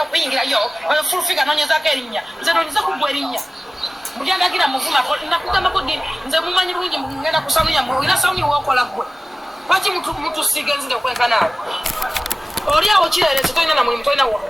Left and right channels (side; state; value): both; normal; correlation 0.97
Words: okuyingirayo fulufiga noonyezaako erinnya nze noonyeza kugwa erinnya mulyandagira muvuma nakugambako ddi nze mumanyi bulungi ngenda kusanuya olina sawuni wokola gwe lwaki mutusiga enzinga okwenkanaawe oli awo kireerezi tolina na mulimu tolina